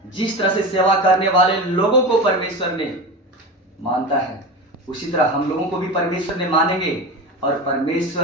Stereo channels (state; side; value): normal; both; correlation 0.26